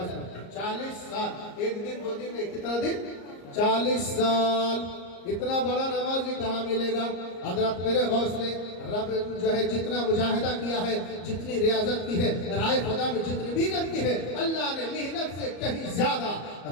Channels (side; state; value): right; late; 34 ms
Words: पढ़ते। 40 साल, एक दिन 2 दिन नहीं, कितना दिन? 40 साल इतना बड़ा नमाज भी कहाँ मिलेगा। हजरत मेरे गौस ने रब जो है जितना मुजाहिदा किया है, जितनी रियाजत की है, राय खुदा में जितनी मेहनत की है, अल्लाह ने मेहनत से कहीं ज्यादा